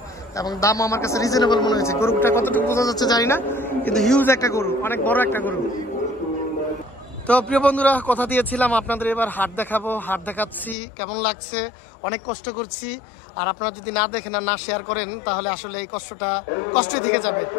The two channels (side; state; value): right; drops out; at 10.8 s